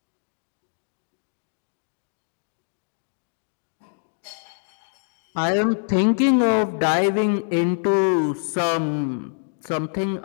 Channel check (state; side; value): silent; right; 62 dB below the other